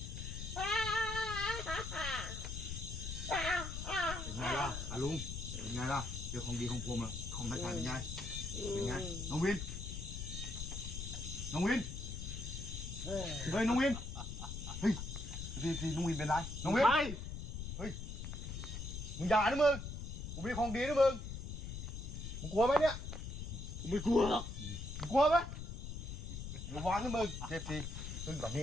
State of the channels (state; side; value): noise; left; rumble, 6 dB below the sound